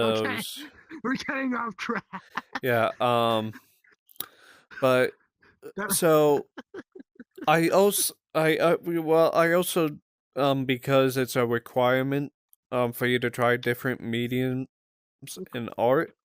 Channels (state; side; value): identical; both; correlation 1.00